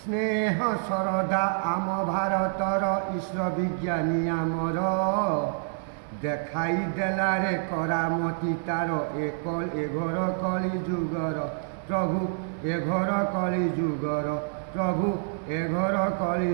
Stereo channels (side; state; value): left; silent; digital silence